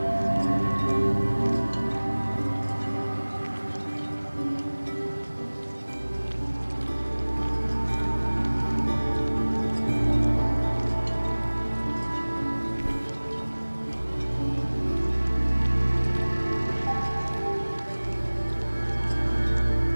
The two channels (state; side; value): inverted; both; correlation -1.00